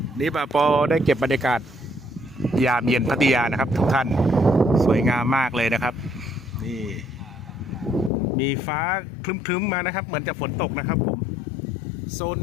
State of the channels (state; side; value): drops out; right; at 8.1 s